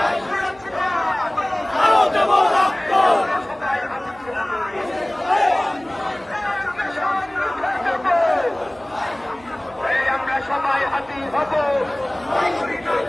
আমরা সবাই হাতি হব,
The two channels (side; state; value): right; noise; hum, 26 dB below the sound